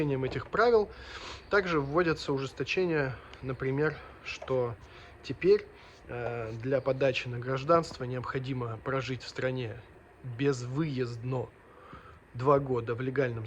этих правил, также вводятся ужесточения, например, что теперь для подачи на гражданство необходимо прожить в стране безвыездно 2 года в легальном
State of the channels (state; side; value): identical; both; correlation 1.00